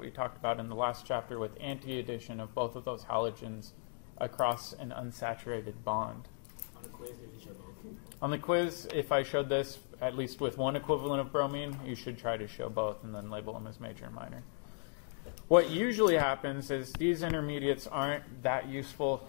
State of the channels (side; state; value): right; silent; 53 dB below the other